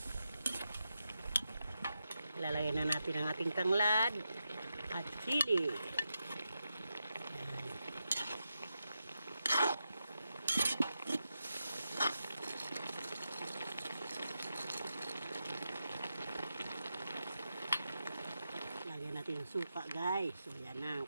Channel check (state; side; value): inverted; both; correlation -0.88